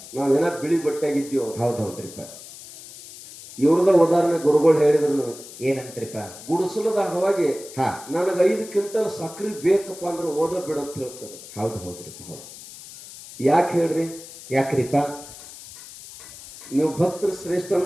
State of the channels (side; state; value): left; noise; hiss, 16 dB below the sound